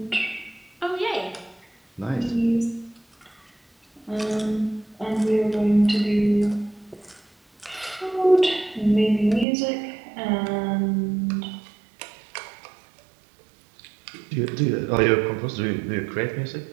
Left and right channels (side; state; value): left; drops out; at 9.5 s